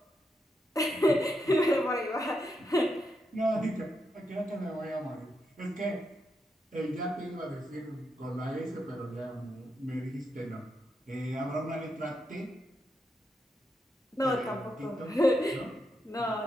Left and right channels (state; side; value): normal; both; correlation 0.83